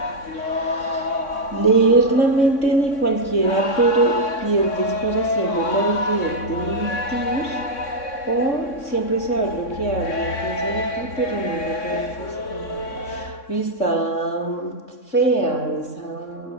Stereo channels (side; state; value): right; late; 3.6 ms